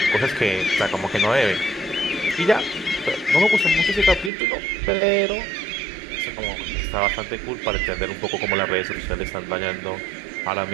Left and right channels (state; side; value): drops out; left; at 4.3 s